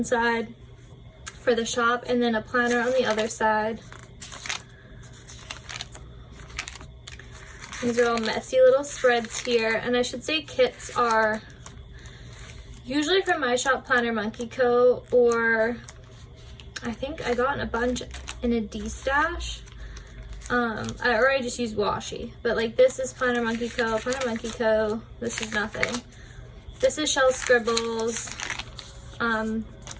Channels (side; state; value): both; identical; correlation 1.00